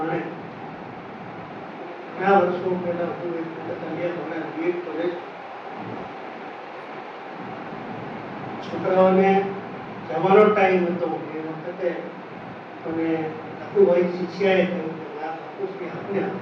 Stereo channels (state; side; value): identical; both; correlation 1.00